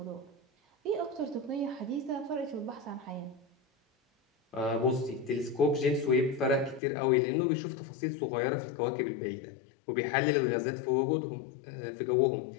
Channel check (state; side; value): drops out; right; at 6.8 s